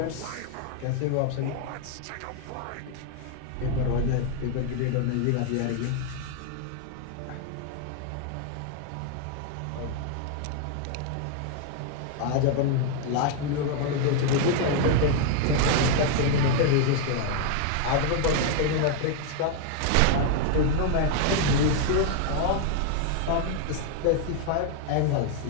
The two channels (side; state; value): both; different; correlation 0.00